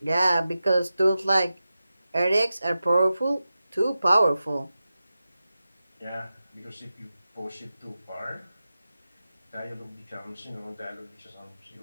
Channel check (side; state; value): both; inverted; correlation -0.92